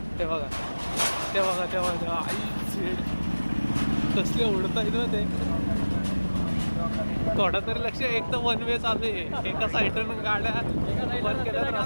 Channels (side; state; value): both; inverted; correlation -1.00